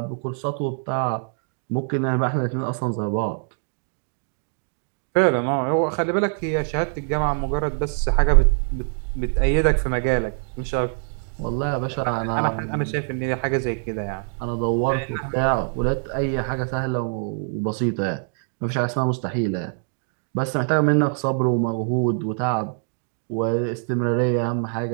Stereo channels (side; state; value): left; silent; 63 dB below the other